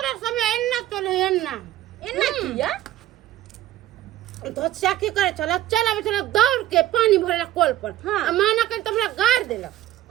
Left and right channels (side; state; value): left; quieter; 13.8 dB